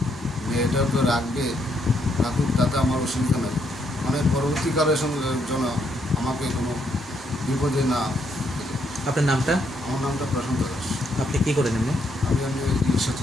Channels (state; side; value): normal; both; correlation 0.74